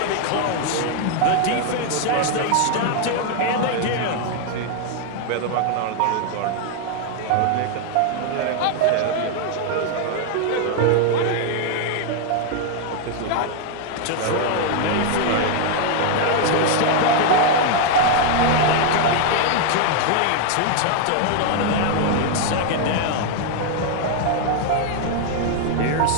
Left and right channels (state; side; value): different; both; correlation 0.00